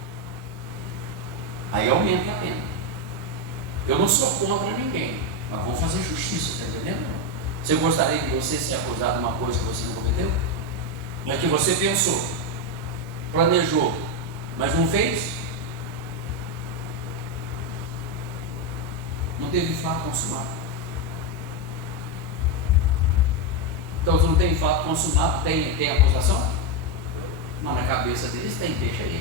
aí aumenta a pena. Eu não sou contra ninguém, mas vamos fazer justiça, está entendendo? Você gostaria de você ser acusado de uma coisa que você não cometeu? Mas que você pensou, planejou, mas não fez? Não teve fato consumado. Então, se não tem fato consumado, tem acusação? Mas na cabeça deles tem, deixa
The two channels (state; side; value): normal; both; correlation 0.07